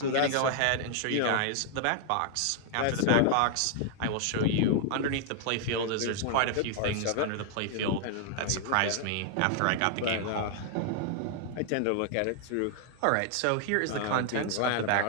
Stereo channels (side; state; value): both; different; correlation -0.01